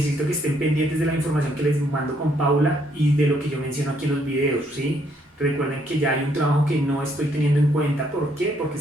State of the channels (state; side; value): normal; both; correlation 0.70